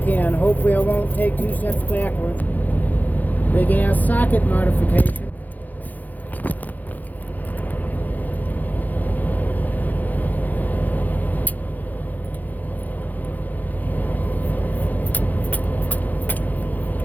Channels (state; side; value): late; right; 0.083 ms